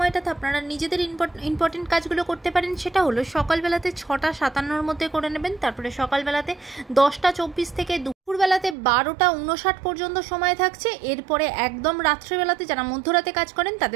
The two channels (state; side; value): drops out; left; at 8.8 s